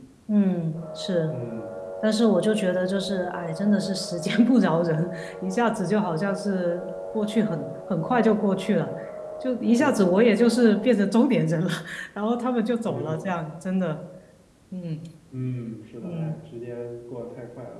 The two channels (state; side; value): identical; both; correlation 1.00